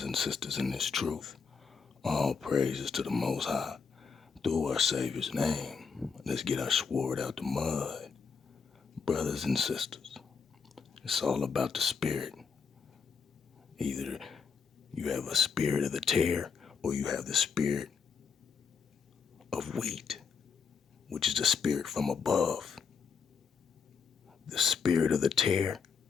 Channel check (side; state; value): right; quieter; 5.9 dB